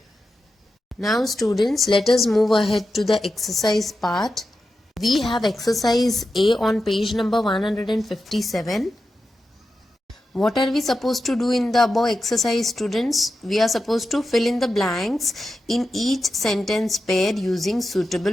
Now students, let us move ahead to the exercise part. We have exercise A on page number 157. What are we supposed to do in the above exercise, students? We are supposed to fill in the blanks in each sentence pair using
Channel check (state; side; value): normal; both; correlation 0.90